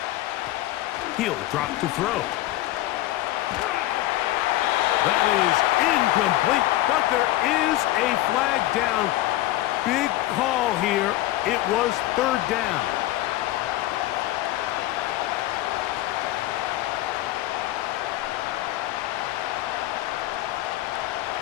He'll drop to throw. That is incomplete, but there is a flag down. Big call here. It was third down.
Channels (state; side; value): quieter; right; 15.9 dB